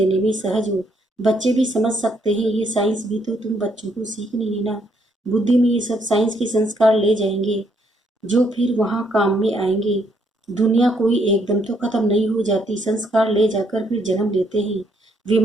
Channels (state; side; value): normal; both; correlation 0.72